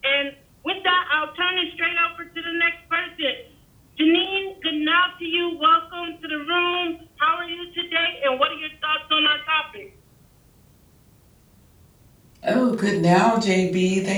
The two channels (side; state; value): both; identical; correlation 1.00